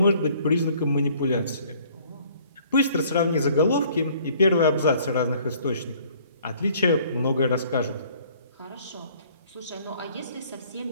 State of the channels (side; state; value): both; inverted; correlation -0.58